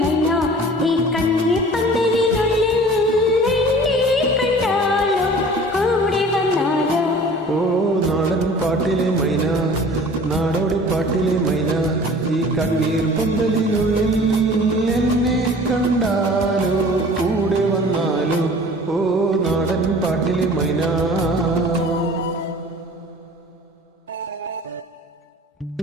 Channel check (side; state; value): both; normal; correlation 0.45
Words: മൈന, ഈ കണ്ണിലെ പന്തലിനുള്ളിൽ എന്നെ കണ്ടാലോ കൂടെ വന്നാലോ. ഓ നാടൻ പാട്ടിലെ മൈന, നാടോടി പാട്ടിലെ മൈന, ഈ കണ്ണീർ പന്തലിനുള്ളിൽ എന്നെ കണ്ടാലോ കൂടെ വന്നാലോ. ഓ നാടൻ പാട്ടിലെ മൈന.